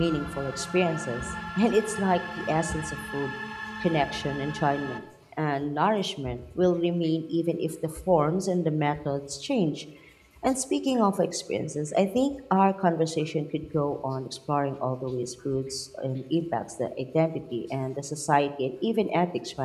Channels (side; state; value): both; identical; correlation 1.00